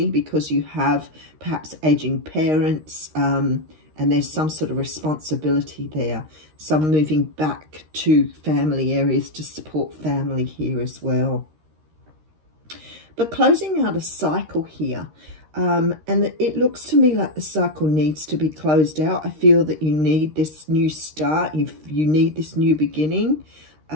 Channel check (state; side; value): late; left; 13 ms